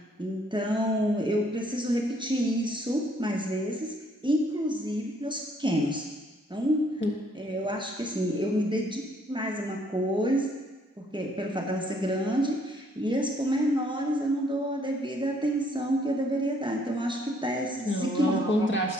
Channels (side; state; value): both; normal; correlation 0.66